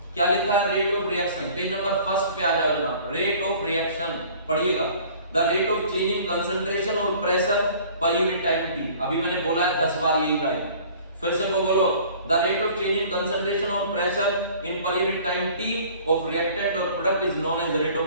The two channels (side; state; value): both; inverted; correlation -0.49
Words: क्या लिखा है? Rate of reaction, page number 1 पे आ जाओ जनाब। रेट ऑफ रिएक्शन पढ़िएगा, the rate of change in concentration और pressure per unit time t. अभी मैंने बोला है 10 बार यही लाइन, फिर से वो बोलो, the rate of change in concentration और pressure in per unit time t of reactant और product is known as rate